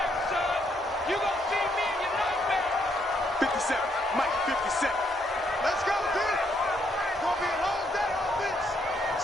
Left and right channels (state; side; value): normal; both; correlation 0.73